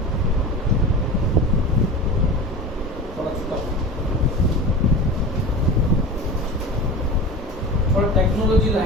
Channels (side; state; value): both; normal; correlation 0.31